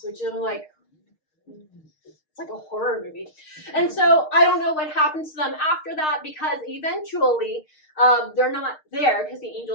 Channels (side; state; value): right; late; 6.5 ms